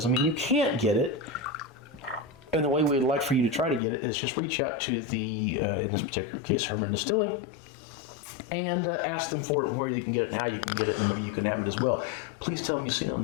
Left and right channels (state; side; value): drops out; right; at 3.8 s